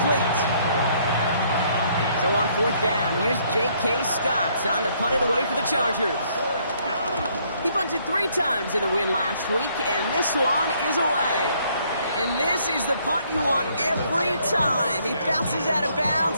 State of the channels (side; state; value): both; inverted; correlation -0.67